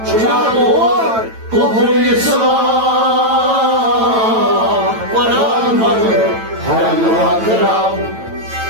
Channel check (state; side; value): late; left; 9.0 ms